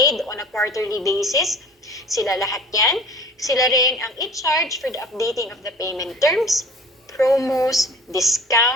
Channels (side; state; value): both; normal; correlation 0.45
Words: on a quarterly basis. Sila lahat yan. Sila rin ang in charge for the updating of the payment terms, promos,